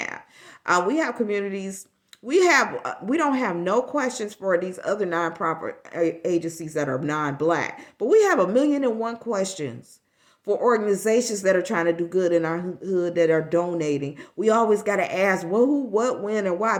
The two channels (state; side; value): identical; both; correlation 1.00